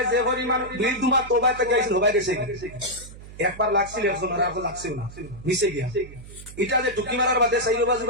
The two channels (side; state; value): right; noise; hum, 16 dB below the sound